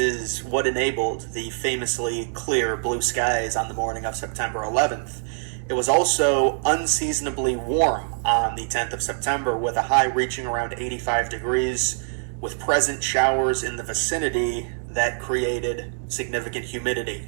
what enabled the famously clear blue skies on the morning of September 11th. It was also unseasonably warm on the 10th of September, with a high reaching around 85 degrees, with present showers in the vicinity that created significant humidity.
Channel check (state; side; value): silent; left; digital silence